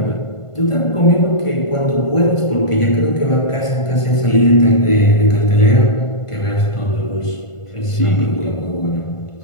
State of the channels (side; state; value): right; late; 1.5 ms